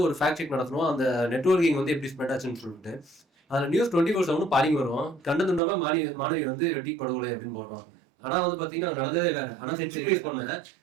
ஒரு ஃபேக்ட் செக் நடத்தணும், அந்த நெட்வொர்க்கிங் வந்து எப்படி ஸ்ப்ரெட் ஆச்சுன்னு சொல்லிட்டு. அதுல நியூஸ் 24/7 பாலிங் வரும், கண்ட துண்டமா மாணவி வந்து வெட்டி படுகொலை அப்படின்னு போடுறோம். ஆனா வந்து பாத்தீங்கன்னா நடந்ததே வேற. ஆனா சென்சிட்டிவைஸ் பண்ண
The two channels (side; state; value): left; drops out; at 5.6 s